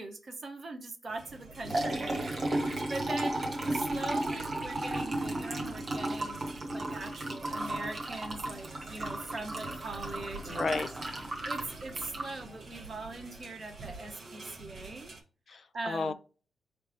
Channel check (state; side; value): normal; both; correlation 0.91